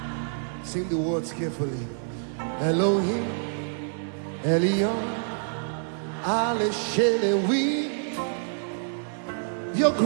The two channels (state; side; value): silent; left; 60 dB below the other